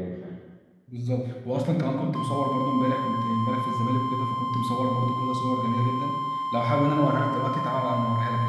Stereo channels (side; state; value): both; identical; correlation 1.00